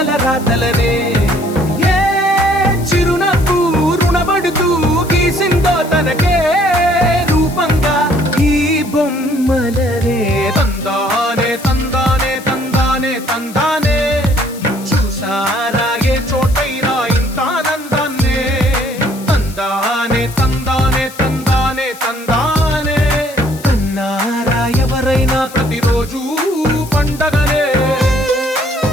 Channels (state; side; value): noise; left; hiss, 18 dB below the sound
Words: రాతలనే ఏ చిరునవ్వు రుణపడుతూ గీసిందో తనకే రూపంగా ఈ బొమ్మలనే తందానే తందానే తందానే తందానే చూసారా ఏ చోటైనా ఇంత ఆనందాన్నే తందానే తందానే తందానే తందానే కన్నారా ఎవరైనా ప్రతిరోజు పండగనే